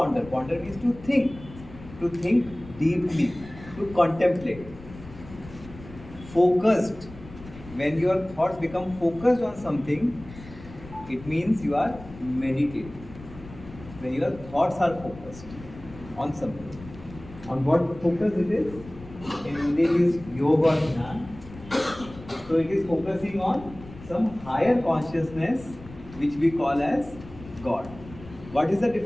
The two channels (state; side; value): noise; left; rumble, 17 dB below the sound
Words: Ponder means to think. To think deeply. To contemplate. Focused. When your thoughts become focused on something, it means you are meditating. When your thoughts are focused on something. On what focus it is? In Hindi it is yoga dhyan. So it is focusing on some higher consciousness which we call as God. What is the